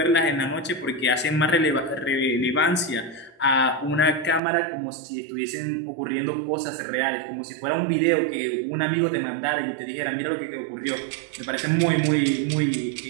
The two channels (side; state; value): left; drops out; at 4.4 s